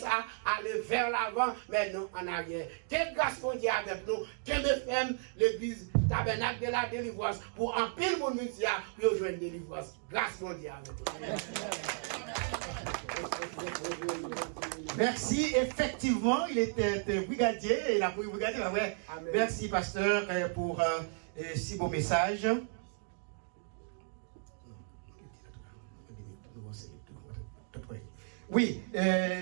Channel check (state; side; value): silent; left; 55 dB below the other